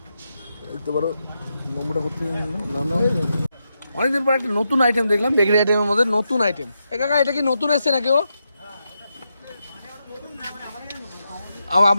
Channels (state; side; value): inverted; both; correlation -0.85